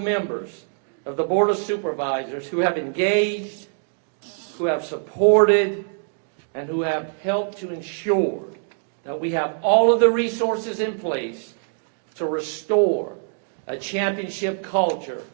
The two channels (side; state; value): left; silent; digital silence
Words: of the Board of Supervisors who have engaged, who have supported, and who have helped to ensure that we have all of the resources in place to restore a championship culture